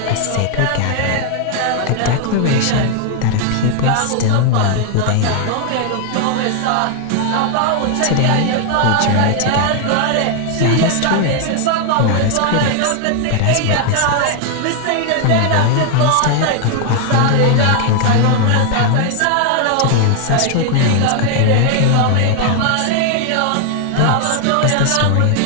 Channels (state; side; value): different; both; correlation 0.00